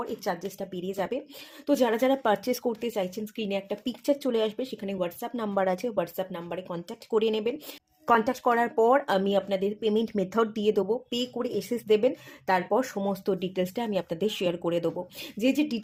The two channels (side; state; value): both; identical; correlation 1.00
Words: এই চার্জেসটা বেরিয়ে যাবে। তো যারা যারা পারচেস করতে চাইছেন, স্ক্রিনে একটা পিকচার চলে আসবে, সেখানে হোয়াটসঅ্যাপ নাম্বার আছে, হোয়াটসঅ্যাপ নাম্বারে কন্ট্যাক্ট করে নেবেন। কন্ট্যাক্ট করার পর আমি আপনাদের পেমেন্ট মেথড দিয়ে দেবো, পে করে এসএস দেবেন। তারপর সমস্ত ডিটেলসটা আমি আপনাদের শেয়ার করে দেবো। যে যে